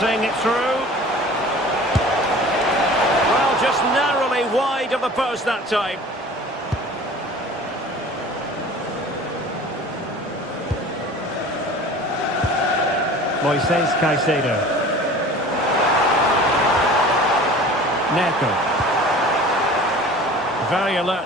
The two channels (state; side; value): normal; both; correlation 0.43